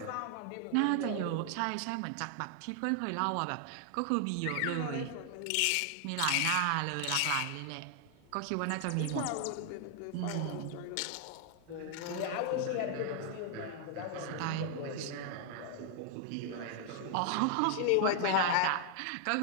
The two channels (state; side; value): different; both; correlation 0.00